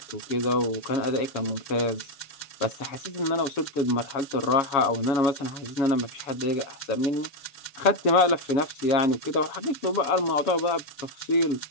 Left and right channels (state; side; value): late; right; 6.9 ms